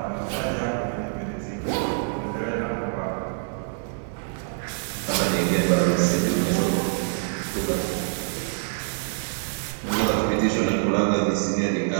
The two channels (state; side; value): silent; left; 61 dB below the other